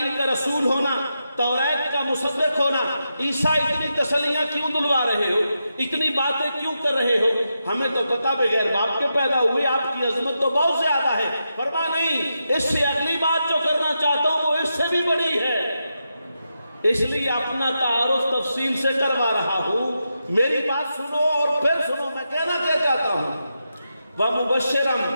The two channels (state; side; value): inverted; both; correlation -0.86